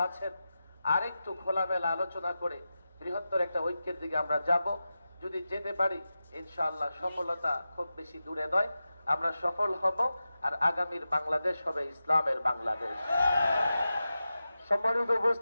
আছেন, আরেকটু খোলামেলা আলোচনা করে বৃহত্তর একটা ঐক্যের দিকে আমরা যাব। যদি যেতে পারি ইনশাআল্লাহ সফলতা খুব বেশি দূরে নয়, আমরা সফল হব। আর আগামীর বাংলাদেশ হবে ইসলামের বাংলাদেশ। সম্মানিত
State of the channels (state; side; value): inverted; both; correlation -0.93